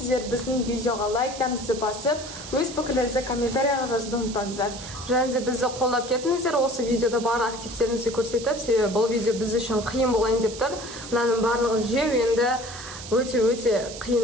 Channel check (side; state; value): right; noise; hiss, 12 dB below the sound